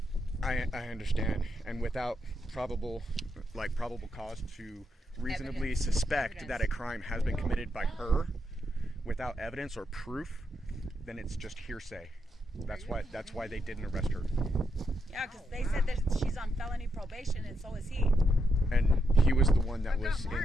I understand, and without probable cause to reasonably suspect that a crime has been committed by her, without evidence or proof, then it's just hearsay. That's why they didn't arrest her. Yeah, because they said that she's on felony probation, and so is he. And he was the one that was got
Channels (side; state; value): both; normal; correlation 0.82